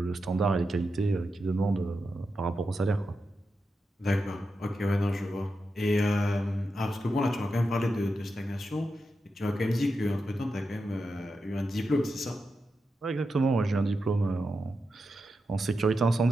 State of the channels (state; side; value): normal; both; correlation 0.88